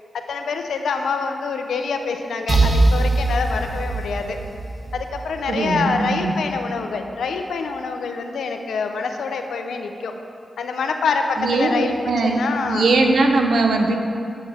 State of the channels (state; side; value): normal; both; correlation 0.83